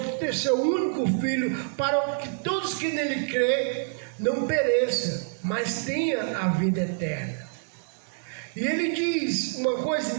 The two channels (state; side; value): silent; left; digital silence